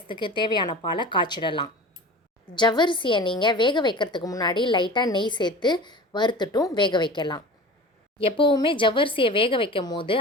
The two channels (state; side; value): normal; both; correlation 0.36